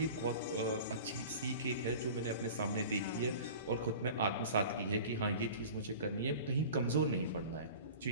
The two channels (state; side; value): inverted; both; correlation -0.39